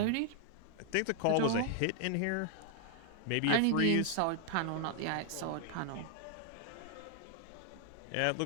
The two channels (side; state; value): both; different; correlation 0.00